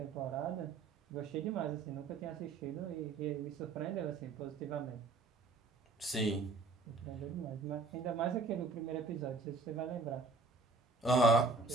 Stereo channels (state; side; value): quieter; left; 3.8 dB